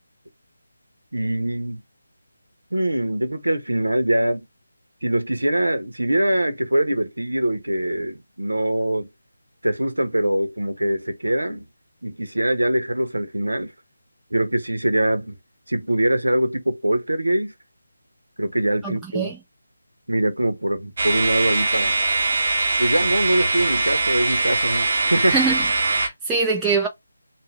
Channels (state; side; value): inverted; both; correlation -0.91